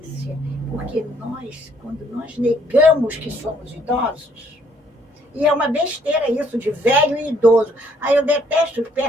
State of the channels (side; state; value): both; normal; correlation 0.66